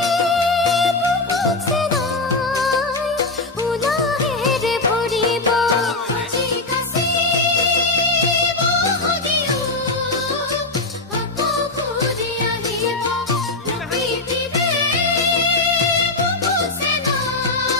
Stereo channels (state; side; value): quieter; right; 3.3 dB